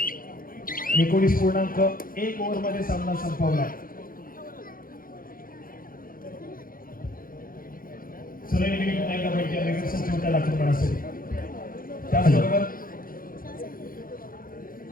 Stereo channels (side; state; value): right; late; 0.41 ms